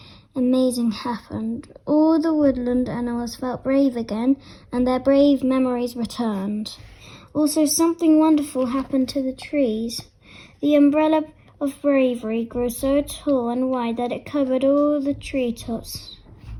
amazing happened. All the woodland animals felt brave again, and their brave memories returned. Also, something wonderful happened to the trees. The umbrella of bravery grew so tall and wide that it covered all the treetops.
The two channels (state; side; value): identical; both; correlation 1.00